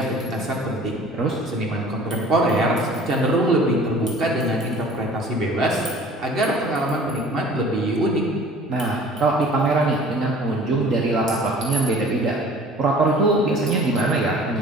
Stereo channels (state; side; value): normal; both; correlation 0.47